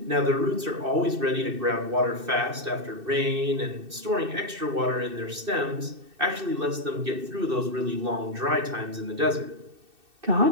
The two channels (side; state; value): left; late; 2.6 ms